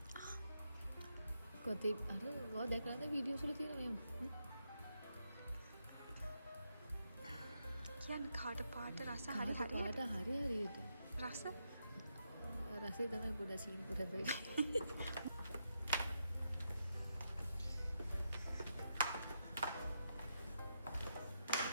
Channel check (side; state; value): both; inverted; correlation -0.82